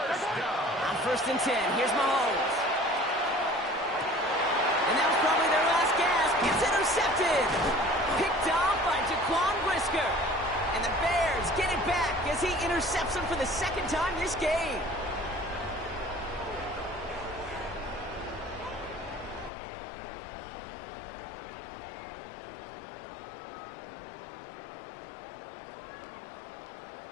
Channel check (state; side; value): drops out; right; at 19.5 s